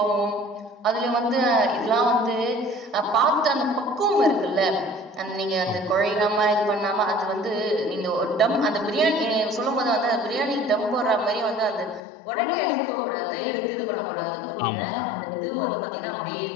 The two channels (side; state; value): right; drops out; at 12.0 s